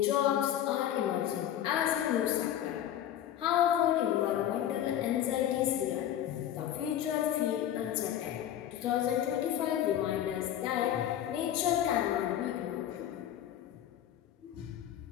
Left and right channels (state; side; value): quieter; right; 11.2 dB